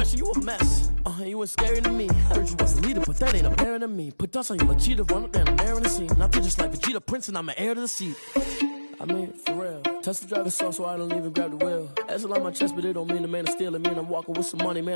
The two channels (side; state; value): both; inverted; correlation -1.00